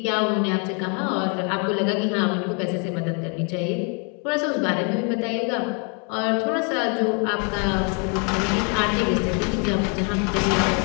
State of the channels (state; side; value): quieter; right; 37.2 dB